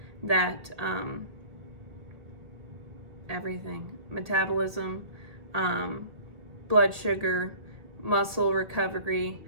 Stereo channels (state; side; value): late; left; 1.9 ms